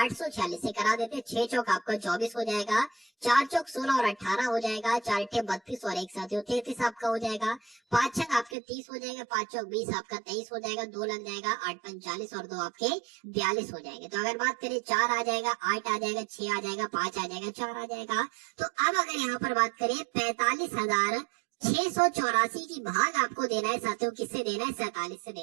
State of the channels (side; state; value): left; drops out; at 8.6 s